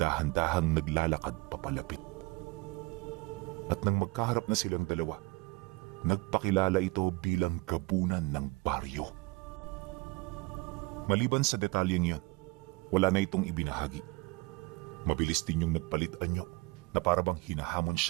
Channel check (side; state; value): left; quieter; 24.1 dB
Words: naglalakad papalapit. At nang magkaharap na silang dalawa, nagpakilala ito bilang gabunan ng baryo. Maliban sa detalyeng yun, wala na itong ibinahagi. Mabilis din yung nagpalit anyo na parabang hinahamon